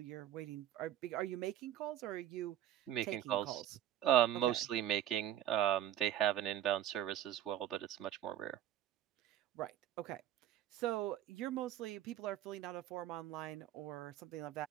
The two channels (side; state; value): left; quieter; 11.8 dB